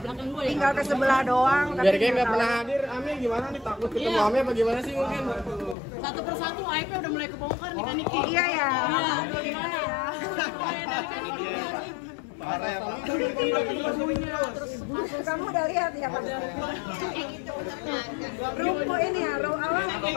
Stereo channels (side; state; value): right; drops out; at 5.8 s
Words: tinggal ke sebelah doang. Biar kayak nggak pernah hadir, Ami gimana nih, takut ketemu Ami apa gimana sih mungkin? Satu persatu aib udah mulai kebongkar nih kan Niki. Iya ya. Gimana ya? Mulai dari kan Niki. Parah ya Pak. Kamu udah lihat ya Pak? Rumput ini ya,